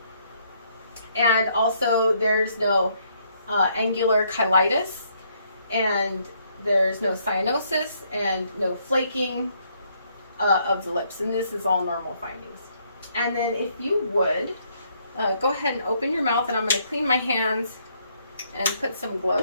And also there's no angular cheilitis, and there's no cyanosis and no flaking of the lips. And this is all normal findings. And then if you would, go ahead and open your mouth, and I'm going to clean my hands and put some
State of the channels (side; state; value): both; inverted; correlation -0.70